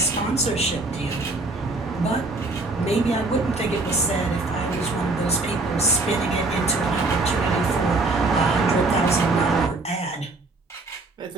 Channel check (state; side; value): quieter; left; 3.2 dB